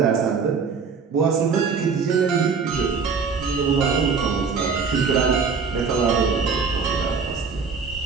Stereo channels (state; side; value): quieter; left; 5.4 dB